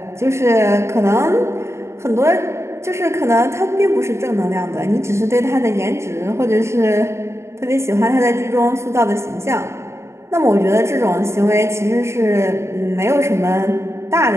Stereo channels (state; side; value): late; left; 0.13 ms